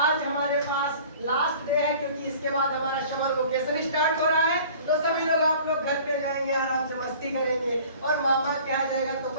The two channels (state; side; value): inverted; both; correlation -0.47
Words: हमारे पास लास्ट डे है, क्योंकि इसके बाद हमारा समर वेकेशन स्टार्ट हो रहा है, तो सभी लोग आप लोग घर पे जाएंगे, आराम से मस्ती करेंगे, और मामा के यहाँ जाएगा तो